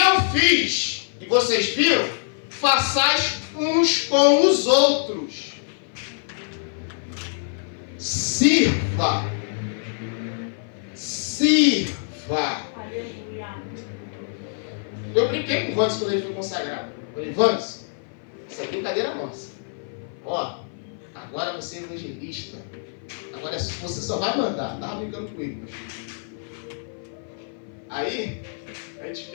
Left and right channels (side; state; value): right; silent; 56 dB below the other